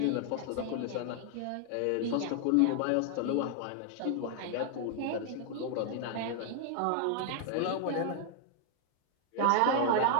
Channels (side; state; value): both; different; correlation 0.00